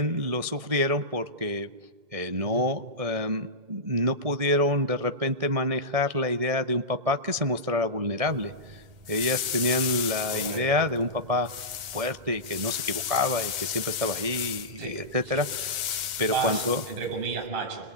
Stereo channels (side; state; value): left; late; 2.1 ms